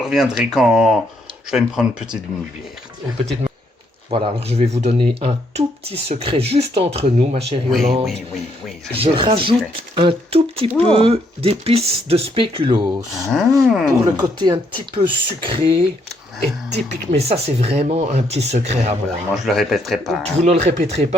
quand je vais me prendre une petite bière. Une petite... Voilà, alors je vais vous donner un tout petit secret juste entre nous, ma chère Yolande. Oui. Je rajoute un tout petit peu d'épices de spéculoos pour le côté un petit peu sucré et typique. Mais ça, c'est vraiment un petit secret à moi. Moi, je le répéterai pas. Vous ne le répéterez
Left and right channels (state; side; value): normal; both; correlation 0.72